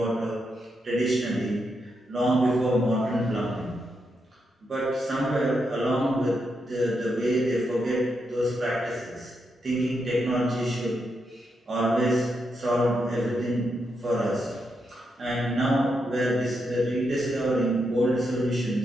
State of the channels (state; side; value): normal; both; correlation 0.83